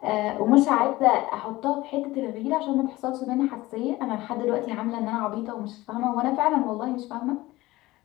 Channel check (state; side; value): quieter; right; 18.7 dB